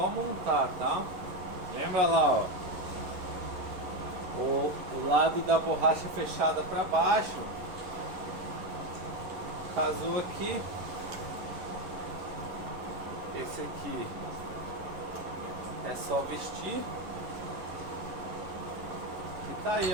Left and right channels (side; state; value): left; late; 11 ms